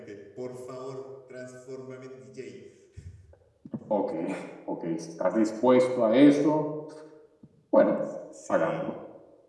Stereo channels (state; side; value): identical; both; correlation 1.00